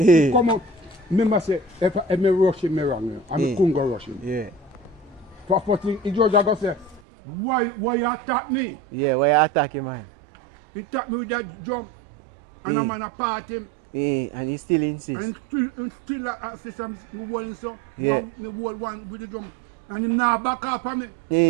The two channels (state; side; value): drops out; left; at 7.0 s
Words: Come out. Remember say, if I rush him wrong, I couldn't go rush him. Yeah. First thing, he just go say, why you attack me? Yeah, why you attack him, man? He attack me with that jump. And I'm gonna part him. Yeah, and he still insists. And still assist him one so. Yeah. The whole one with the jump. And him now back up on me. Yeah.